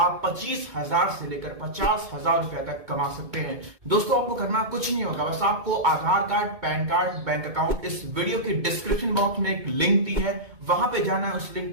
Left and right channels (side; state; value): left; late; 2.2 ms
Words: 25,000 से लेकर 50,000 रुपए तक कमा सकते हैं। दोस्तों आपको करना कुछ नहीं होगा, बस आपको Aadhaar card, PAN card, bank account, इस वीडियो की डिस्क्रिप्शन बॉक्स में एक लिंक दी है, वहां पे जाना है, उस लिंक